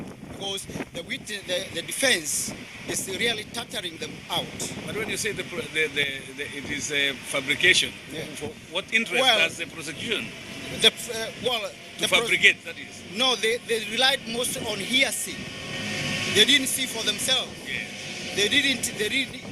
because the defense is really tattering them out. But when you say it is a fabrication, Yeah. what interest does the prosecution to fabricate, that is? No, they relied mostly on hearsay. They didn't see for themselves. Yes. They didn't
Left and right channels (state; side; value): identical; both; correlation 1.00